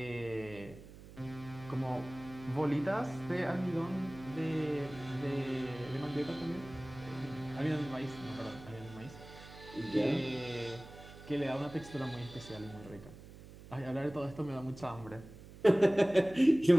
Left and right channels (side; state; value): right; noise; hum, 17 dB below the sound